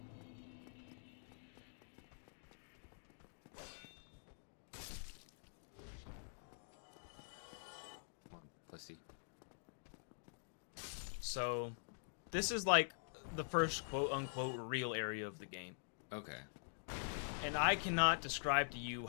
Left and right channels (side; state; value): right; silent; digital silence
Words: Come on, pussy. So, this is like the first quote-unquote real area of the game. Okay. And I cannot describe to you